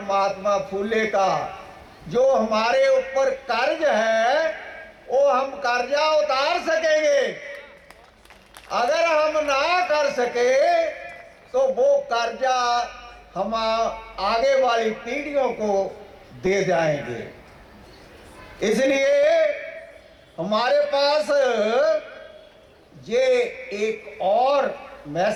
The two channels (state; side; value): identical; both; correlation 1.00